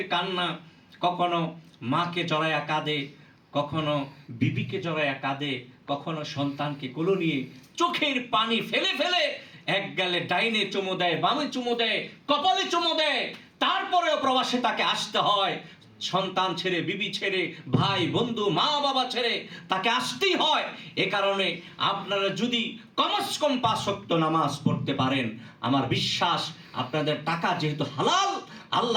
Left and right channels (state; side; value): identical; both; correlation 1.00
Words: কান্না, কখনো মাকে জড়ায়া কাঁদে, কখনো বিবিকে জড়ায়া কাঁদে, কখনো সন্তানকে কোলে নিয়ে চোখের পানি ফেলে ফেলে এক গালে ডাইনে চুমু দেয়, বামে চুমু দেয়, কপালে চুমু দেয়, তারপরেও প্রবাসে তাকে আসতে হয়। সন্তান ছেড়ে, বিবি ছেড়ে, ভাই বন্ধু মা বাবা ছেড়ে তাকে আসতেই হয়। এ কারণে আপনারা যদি কমস কম 5 ওয়াক্ত নামাজ পড়তে পারেন, আমার বিশ্বাস আপনাদের টাকা যেহেতু হালাল,